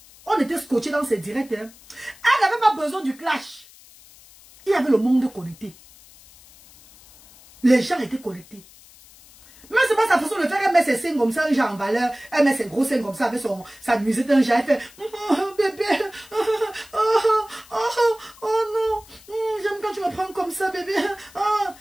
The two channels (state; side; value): noise; left; hiss, 24 dB below the sound